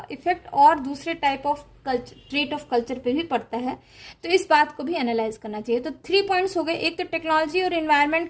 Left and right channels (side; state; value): both; identical; correlation 1.00